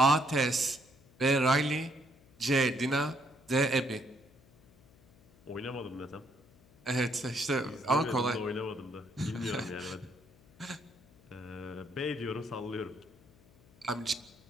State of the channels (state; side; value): noise; left; hum, 28 dB below the sound